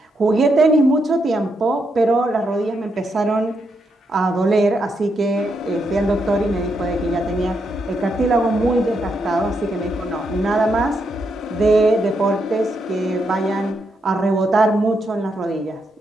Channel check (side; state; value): both; normal; correlation 0.80